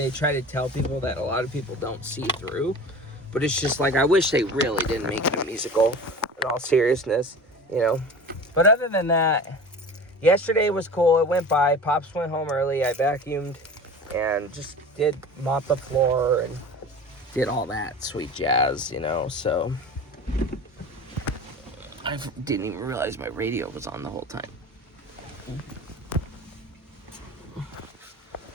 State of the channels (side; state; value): both; normal; correlation 0.36